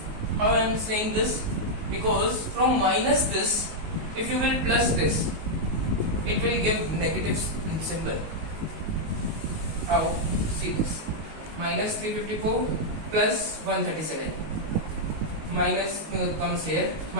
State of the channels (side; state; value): left; late; 19 ms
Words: How I am saying this? Because from minus this, if you will plus this, it will give negative symbol. How? See this. Minus 354 plus 137. Minus comes here.